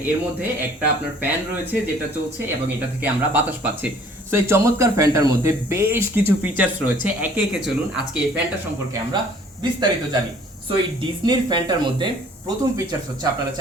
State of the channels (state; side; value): normal; both; correlation 0.55